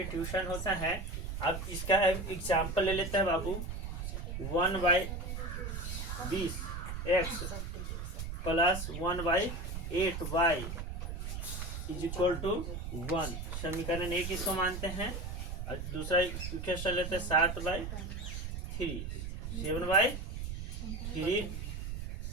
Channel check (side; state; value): right; noise; rumble, 5 dB below the sound